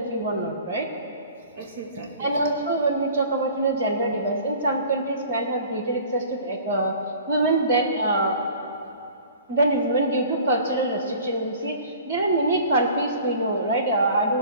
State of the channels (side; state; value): both; inverted; correlation -0.46